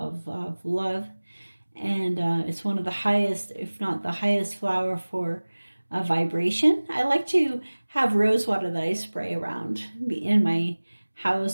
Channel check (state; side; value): inverted; both; correlation -1.00